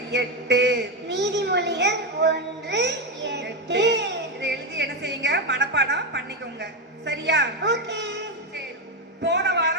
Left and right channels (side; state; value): both; normal; correlation 0.09